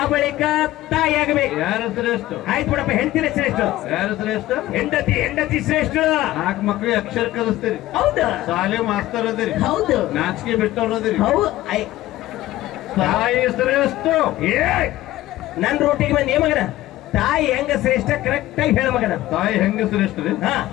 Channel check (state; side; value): quieter; right; 15.8 dB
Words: ಬಳಿಕ ತಾಯಿ ಆಗಬೇಕು ಯಾರು ಶ್ರೇಷ್ಠ ಆಯ್ತು ಬಿಡಪ್ಪ ಹೆಂಡತಿನ ಶ್ರೇಷ್ಠ ಯಾರು ಶ್ರೇಷ್ಠ ಹೆಂಡತಿ ಶ್ರೇಷ್ಠ 4 ಮಕ್ಳಿಗೆ ಅಕ್ಷರ ಕಲಿಸ್ತೀರಿ ಹೌದಾ ಶಾಲೆ ಮಾಸ್ತರ್ ಅದಿರಿ ಹೌದು ನಾಚಿಕೆ ಬಿಟ್ಟವ್ರು ಅದಿರಿ ಹೌದು ತಾಯಿ ಶ್ರೇಷ್ಠ ನನ್ ರೋಟಿಗೆ ಬಂದ್ ಮಗನ ತಾಯಿ ಹೆಂಗ ಶ್ರೇಷ್ಠ ಕರೆಕ್ಟ್ ಆಗಿ ಹೇಳ ಮಗನ ತಾಯಿ ಹೆಂಗ ಶ್ರೇಷ್ಠ ರೀ